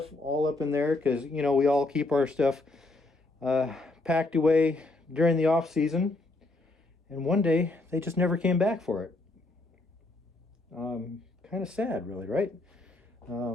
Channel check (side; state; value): right; quieter; 3.0 dB